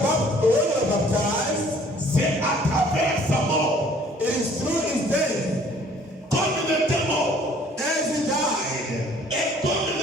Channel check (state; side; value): normal; both; correlation 0.56